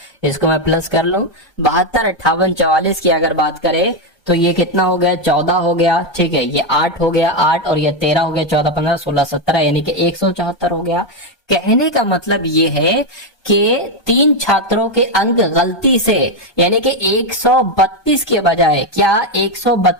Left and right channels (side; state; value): right; late; 1.2 ms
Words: इसको मैं प्लस कर लूं। 72, 58, 44 की अगर बात करें तो ये कितना हो गया, 14 हो गया। ठीक है, ये 8 हो गया, 8 और ये 13 हो गया, 14, 15, 16, 17, यानी कि 174 हो गया। कहने का मतलब ये है कि 3 छात्रों के अंक गलती से, यानी कि 132 के बजाय, क्या